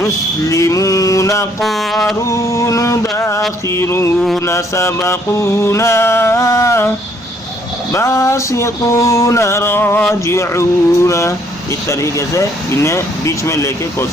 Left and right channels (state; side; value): normal; both; correlation 0.66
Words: قارون داخرون سبقونا باسطون راجعون. اس طریقے سے انہیں بیچ میں لے کے